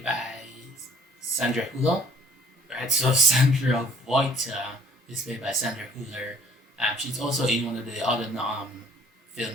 by Sandra Hüller, right? So Sandra Voigt is played by Sandra Hüller. She's also in one of the other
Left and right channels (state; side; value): normal; both; correlation 0.55